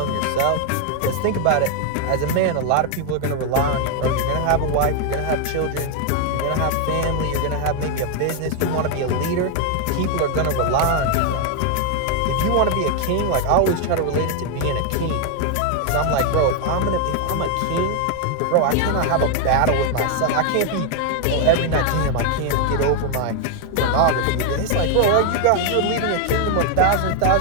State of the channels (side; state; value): both; different; correlation 0.00